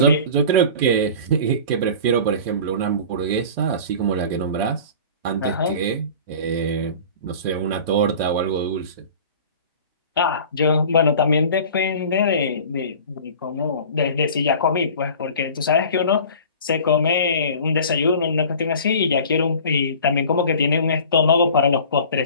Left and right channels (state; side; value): inverted; both; correlation -0.41